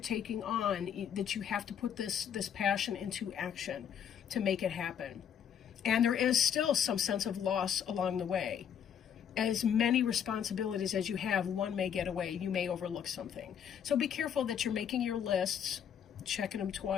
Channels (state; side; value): quieter; right; 8.6 dB